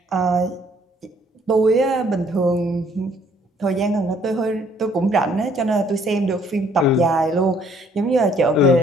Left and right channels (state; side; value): normal; both; correlation 0.63